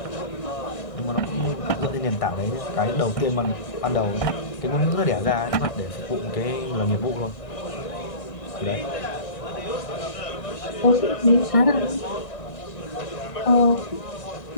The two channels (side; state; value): right; late; 1.6 ms